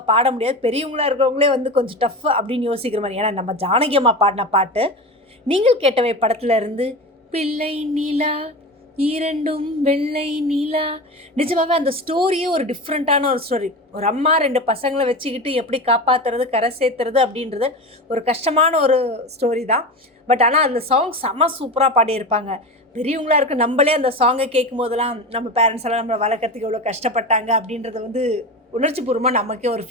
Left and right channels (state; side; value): normal; both; correlation 0.26